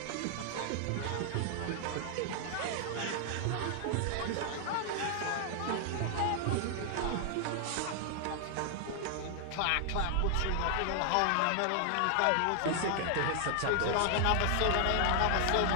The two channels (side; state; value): both; different; correlation 0.00